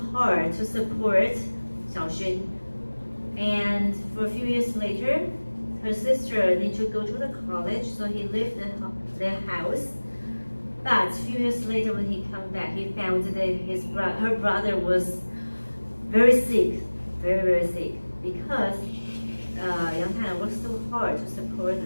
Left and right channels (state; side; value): inverted; both; correlation -1.00